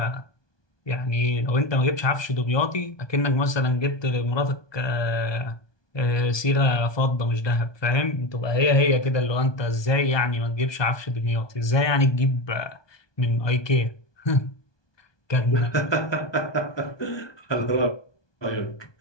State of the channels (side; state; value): right; late; 1.2 ms